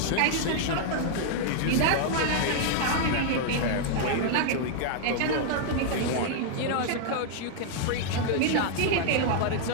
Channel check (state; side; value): different; both; correlation -0.01